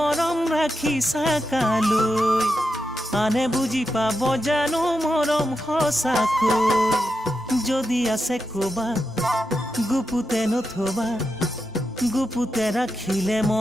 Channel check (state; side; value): normal; both; correlation 0.87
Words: ৰাখিছা কালৈ আনে বুজি পাব জানো মৰম সঁচাকৈ যদি আছে কবা গুপুতে নথবা গুপুতে ৰাখিলে